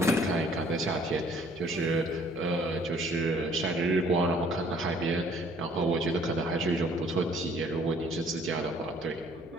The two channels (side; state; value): right; noise; hum, 26 dB below the sound